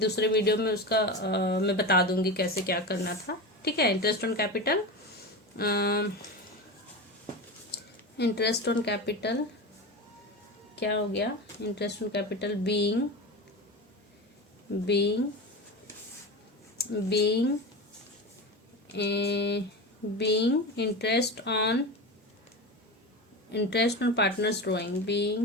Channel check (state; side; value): normal; both; correlation 0.24